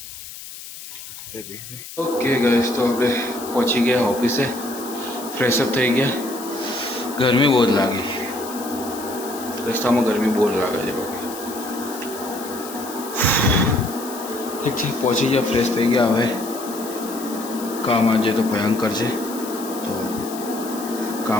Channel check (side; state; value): left; noise; hiss, 13 dB below the sound